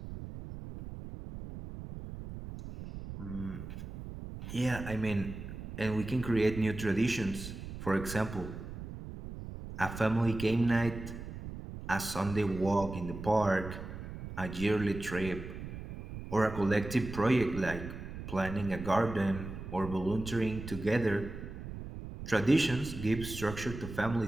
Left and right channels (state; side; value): noise; right; rumble, 10 dB below the sound